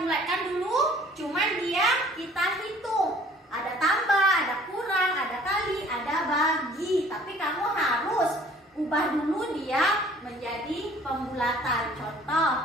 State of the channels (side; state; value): both; normal; correlation 0.54